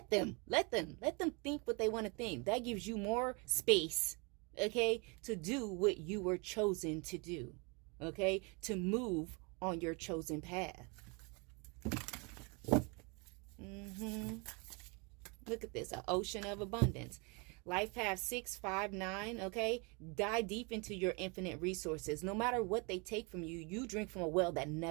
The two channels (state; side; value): quieter; left; 31.4 dB